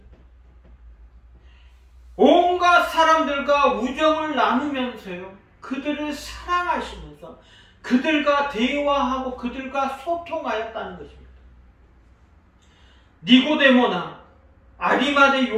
온갖 사람들과 우정을 나누면서요, 그들을 사랑하시면서 그들과 대화하고 그들과 소통하였다는 것입니다. 니고데모나 아리마대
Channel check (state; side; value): identical; both; correlation 1.00